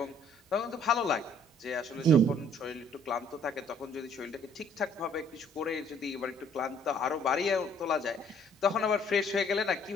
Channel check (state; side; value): normal; both; correlation 0.61